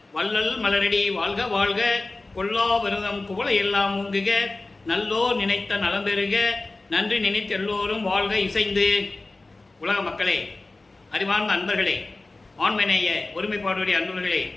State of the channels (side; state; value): right; quieter; 3.2 dB